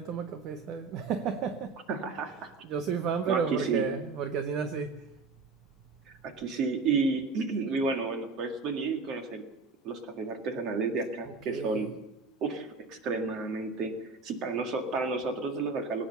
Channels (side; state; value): left; quieter; 4.2 dB